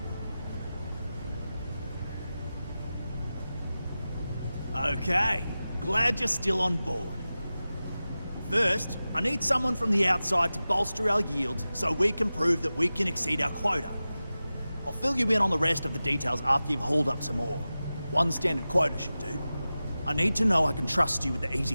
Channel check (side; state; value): both; inverted; correlation -0.95